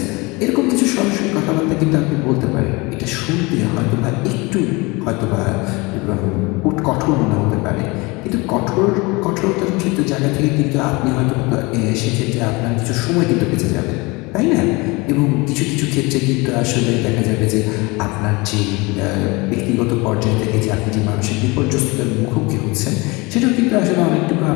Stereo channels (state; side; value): quieter; right; 25.1 dB